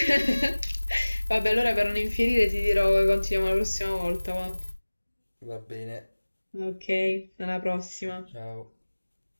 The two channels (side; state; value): both; inverted; correlation -1.00